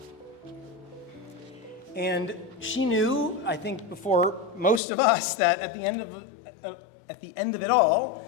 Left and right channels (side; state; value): right; drops out; at 4.8 s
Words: And she knew, I think before most of us, that at the end of it